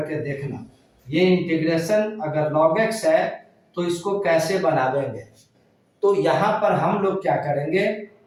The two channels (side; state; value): both; identical; correlation 1.00